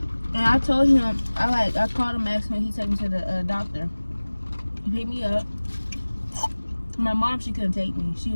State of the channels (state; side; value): inverted; both; correlation -1.00